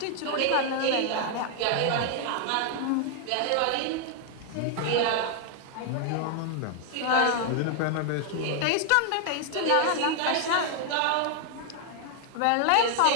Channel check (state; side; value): different; both; correlation 0.00